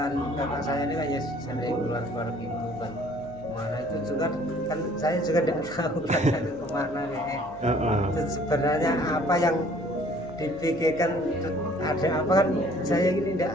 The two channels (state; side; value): noise; left; hum, 20 dB below the sound